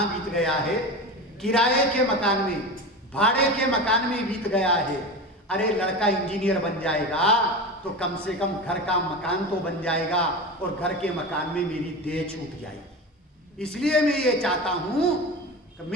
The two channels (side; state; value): both; normal; correlation 0.26